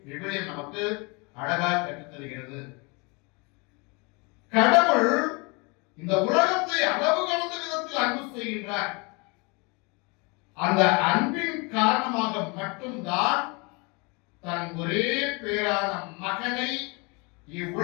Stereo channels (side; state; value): right; quieter; 29.5 dB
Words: விவிலியம் நமக்கு அழகாக கற்றுத் தருகிறது. கடவுள் இந்த உலகத்தை அளவு கடந்த விதத்தில் அன்பு செய்கின்றார். அந்த அன்பின் காரணமாக மட்டும்தான் தன் ஒரே பேரான மகனை